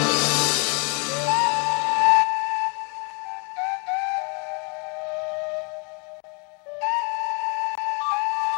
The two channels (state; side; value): quieter; right; 35.4 dB